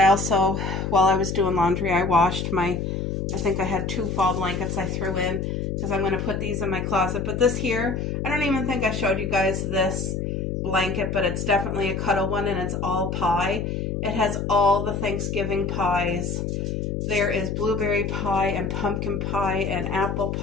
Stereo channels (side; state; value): left; noise; hum, 2 dB below the sound